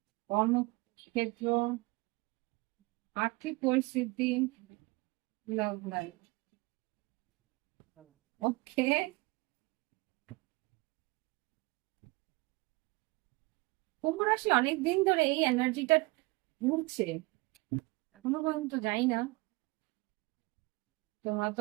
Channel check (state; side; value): quieter; left; 24.5 dB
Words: কর্মক্ষেত্র, আর্থিক পরিস্থিতি, লাভ লাইফ। ওকে। কুম্ভ রাশি অনেকদিন ধরে এই এনার্জিটা ঘুরছে, এখনো পর্যন্ত যাই না। তোমরা তো